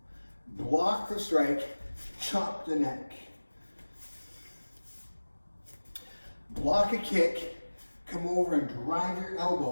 Block the strike, chop the neck. Block a kick, come over and drive your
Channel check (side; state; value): both; inverted; correlation -1.00